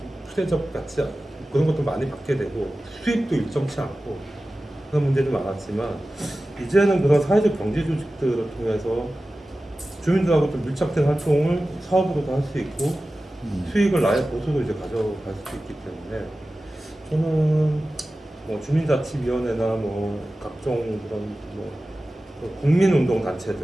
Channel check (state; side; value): normal; both; correlation 0.95